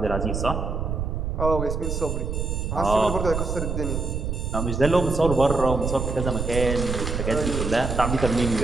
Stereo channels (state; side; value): noise; right; rumble, 2 dB below the sound